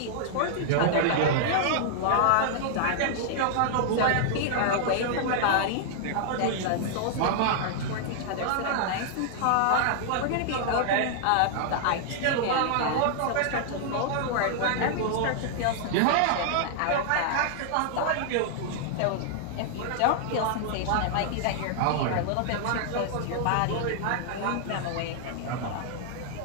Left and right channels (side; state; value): both; different; correlation -0.01